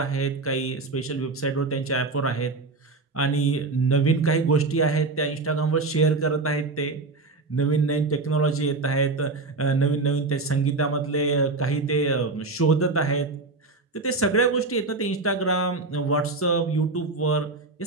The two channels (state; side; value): quieter; left; 3.6 dB